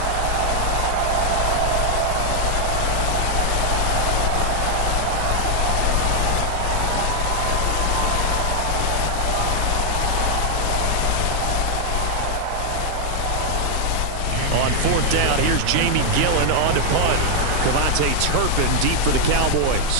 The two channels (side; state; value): both; different; correlation 0.00